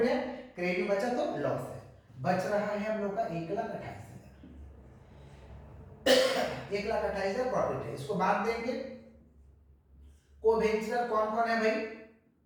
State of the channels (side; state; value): both; identical; correlation 1.00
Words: है, क्रेडिट में बचा तो लॉस है। बच रहा है हम लोग का 1,28,000, 1,28,000 प्रॉफिट है। इसको बांट देंगे। को वेंचर कौन कौन है भाई?